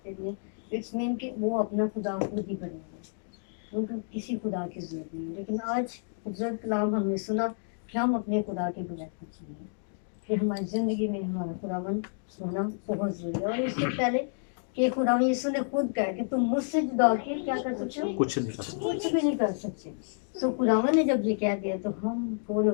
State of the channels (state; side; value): silent; right; digital silence